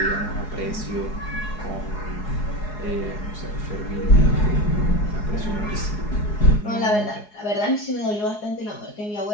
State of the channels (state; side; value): late; right; 4.8 ms